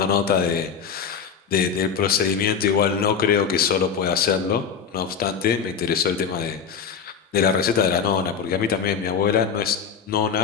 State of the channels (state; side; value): quieter; right; 6.8 dB